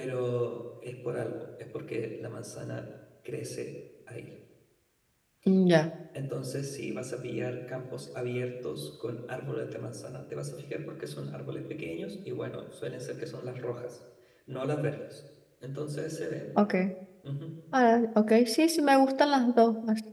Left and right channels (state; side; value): identical; both; correlation 1.00